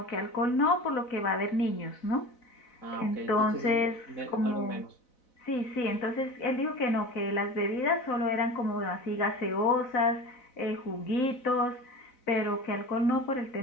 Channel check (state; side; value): late; right; 4.0 ms